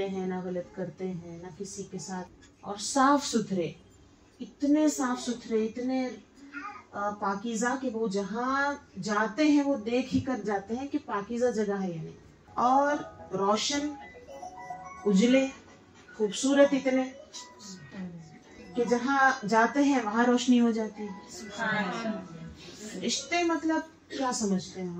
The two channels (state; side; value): identical; both; correlation 1.00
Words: हैं ना, गलत करते हैं ना किसी के साथ, और साफ सुथरे, इतने साफ सुथरे, इतने पाकीज़ा कि वो जहाँ जाते हैं वो देख ही कर जाते हैं कि पाकीज़ा जगह है या नहीं, और रोशन, उजले, खूबसूरत इतने कि जहाँ जाते हैं वहां रोशनी हो जाती है। रिश्ते मतलब क्या समझते हैं